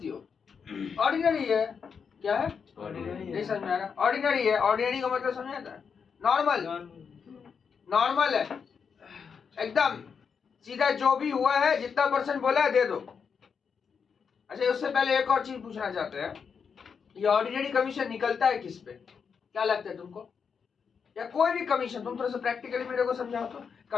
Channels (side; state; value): right; quieter; 6.3 dB